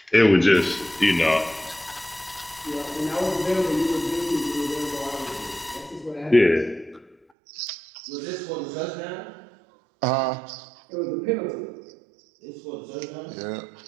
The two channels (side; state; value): left; drops out; at 7.2 s